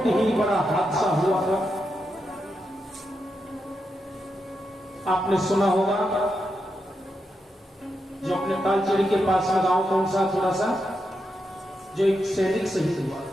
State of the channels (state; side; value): normal; both; correlation 0.85